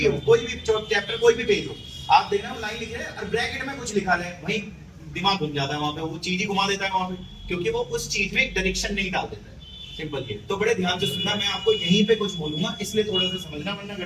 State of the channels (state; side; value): identical; both; correlation 1.00